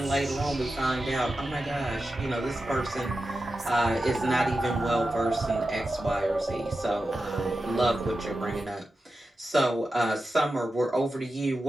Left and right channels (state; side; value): normal; both; correlation 0.92